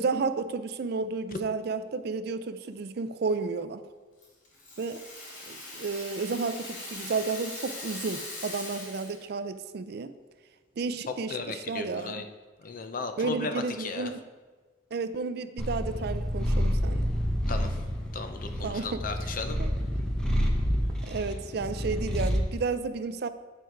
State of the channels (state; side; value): normal; both; correlation 0.42